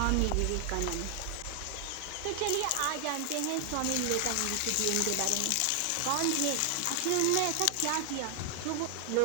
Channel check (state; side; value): different; both; correlation 0.00